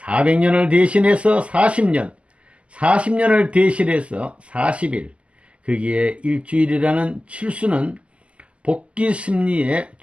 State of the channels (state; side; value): late; left; 0.061 ms